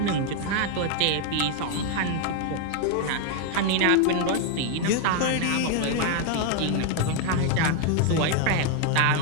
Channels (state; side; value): different; both; correlation 0.01